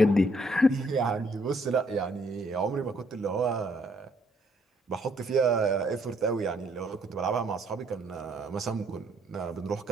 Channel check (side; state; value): both; normal; correlation 0.68